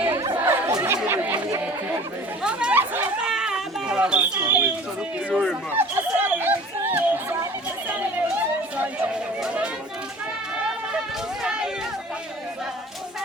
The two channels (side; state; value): both; normal; correlation 0.45